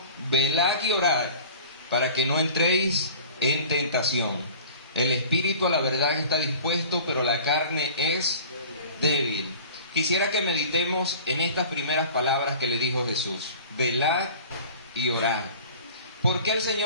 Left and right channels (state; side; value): inverted; both; correlation -0.43